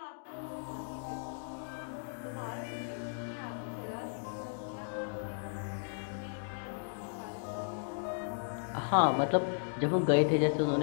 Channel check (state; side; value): silent; right; digital silence